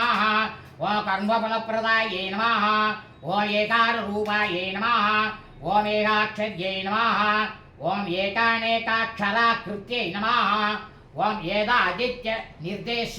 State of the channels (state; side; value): identical; both; correlation 1.00